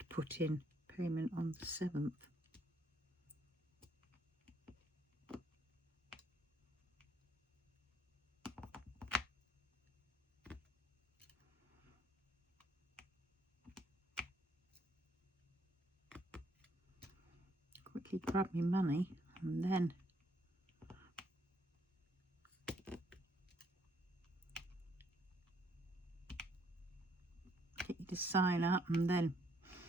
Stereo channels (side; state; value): both; normal; correlation 0.69